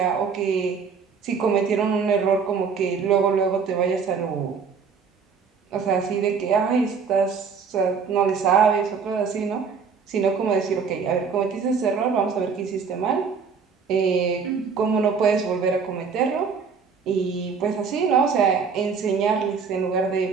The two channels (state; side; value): quieter; left; 5.8 dB